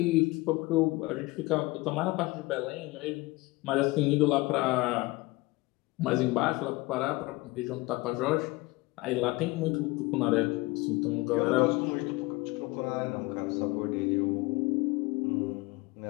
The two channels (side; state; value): right; quieter; 21.7 dB